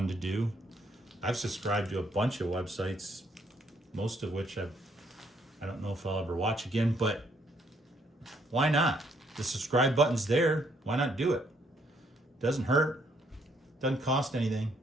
to do. I've subscribed to a bunch of websites, most of which I don't know if I'll ever watch again, but why not? The subscribe button's there. Why not do it? Doesn't hurt. Doesn't cost anything.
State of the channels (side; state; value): both; normal; correlation 0.69